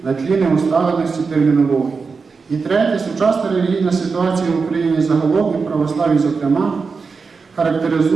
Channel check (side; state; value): left; quieter; 4.8 dB